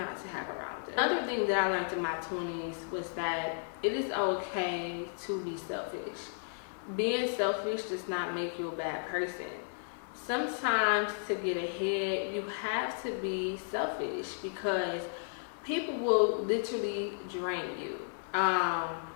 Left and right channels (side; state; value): right; silent; digital silence